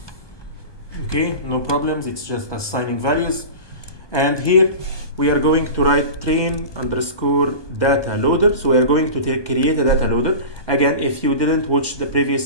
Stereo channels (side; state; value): right; late; 1.2 ms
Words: Okay, no problems, it's just assigning values. And here we are going to write train underscore data loader. So we are going to create a data loader. Again, if you didn't watch the